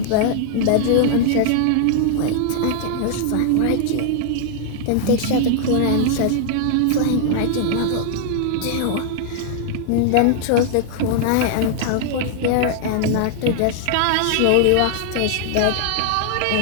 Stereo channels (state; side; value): different; both; correlation 0.00